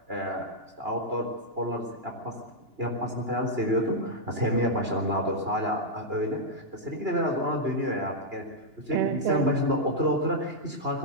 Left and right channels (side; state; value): left; late; 2.9 ms